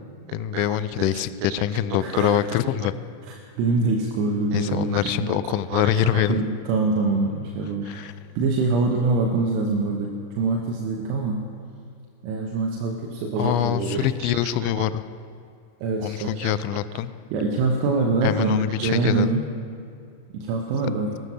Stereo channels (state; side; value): late; left; 34 ms